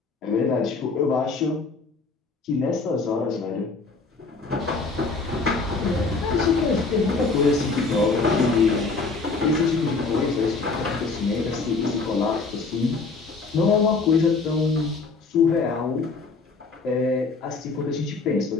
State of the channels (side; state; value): right; quieter; 4.1 dB